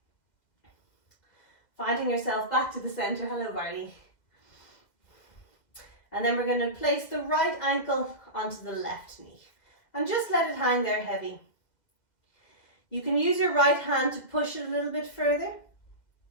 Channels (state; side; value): late; right; 2.0 ms